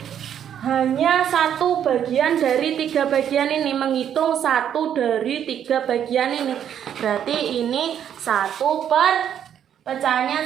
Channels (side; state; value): left; quieter; 9.4 dB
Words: hanya 1 bagian dari 3 bagian ini, menghitung 1 dari 3 bagian ini. Berarti ini 1 per